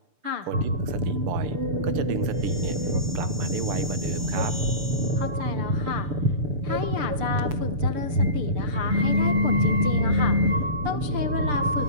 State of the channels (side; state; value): left; late; 6.8 ms